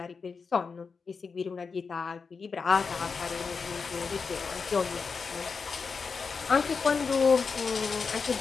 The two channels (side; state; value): right; quieter; 5.1 dB